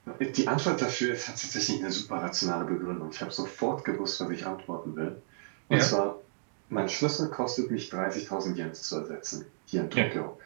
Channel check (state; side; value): silent; left; digital silence